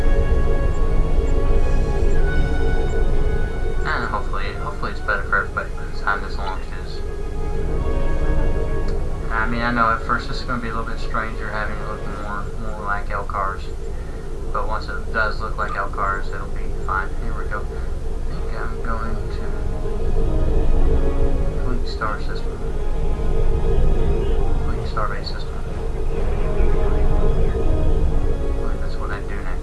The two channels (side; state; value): both; identical; correlation 1.00